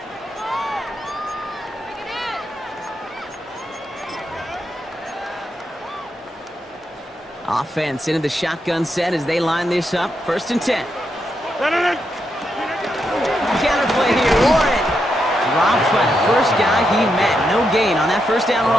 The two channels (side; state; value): both; normal; correlation 0.83